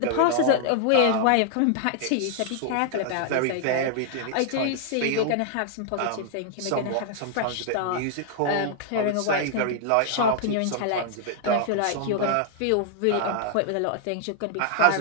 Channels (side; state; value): both; different; correlation -0.01